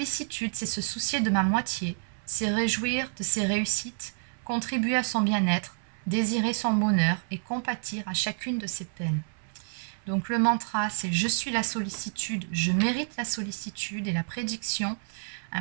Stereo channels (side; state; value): left; silent; 59 dB below the other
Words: c'est se soucier de ma moitié, c'est réjouir de ses réussites, contribuer à son bien-être, désirer son bonheur et compatir à chacune de ses peines. Donc le mantra, c'est je suis la sollicitude, je mérite la sollicitude, et la prédiction,